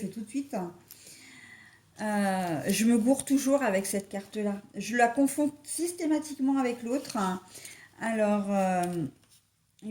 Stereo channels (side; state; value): both; identical; correlation 1.00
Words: tout de suite. Je me gourre toujours avec cette carte-là. Je la confonds systématiquement avec l'autre. Alors,